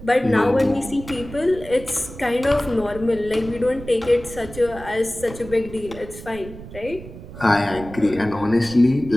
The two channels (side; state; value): right; noise; rumble, 14 dB below the sound